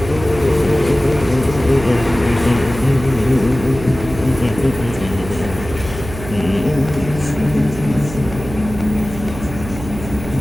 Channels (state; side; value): noise; right; hum, 11 dB below the sound